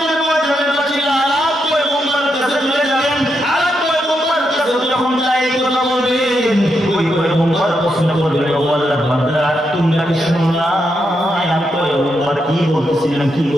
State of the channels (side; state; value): both; normal; correlation 0.82